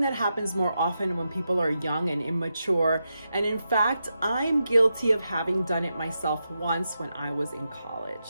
that happens more often when people are young and immature, and in fact, I'm guilty of having done it myself once when I was in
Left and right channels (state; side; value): inverted; both; correlation -0.87